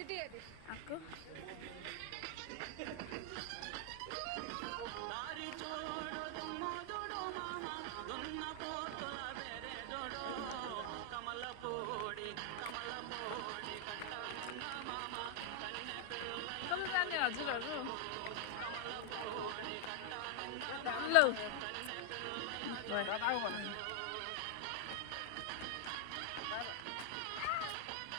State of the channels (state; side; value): different; both; correlation 0.00